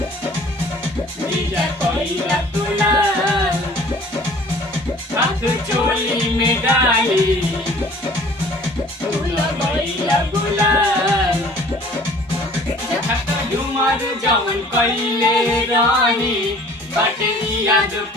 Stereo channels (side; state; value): both; normal; correlation 0.51